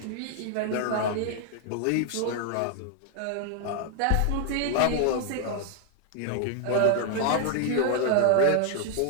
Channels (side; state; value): both; different; correlation 0.00